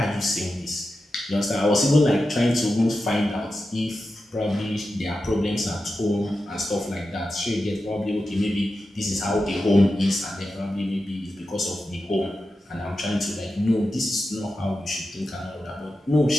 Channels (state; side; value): normal; both; correlation 0.91